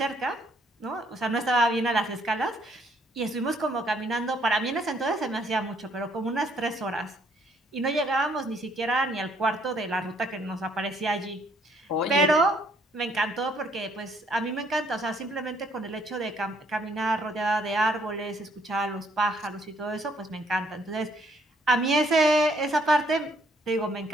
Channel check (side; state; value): both; normal; correlation 0.66